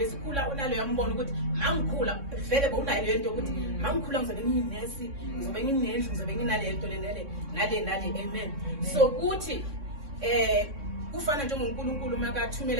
unaleyo mbona ukuthi mangikhula vele bowunayo leyo nto ukuthi mangikhula ngizobe ngiyinesi, ngizobe nginendlu, ngizobe nginale nto nale. Amen. So kuthi kufana njengoNkulunkulu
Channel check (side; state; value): left; late; 3.6 ms